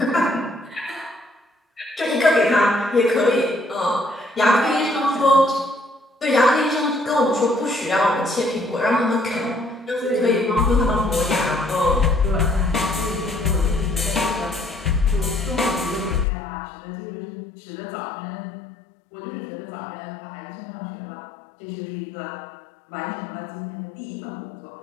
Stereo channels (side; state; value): right; drops out; at 16.2 s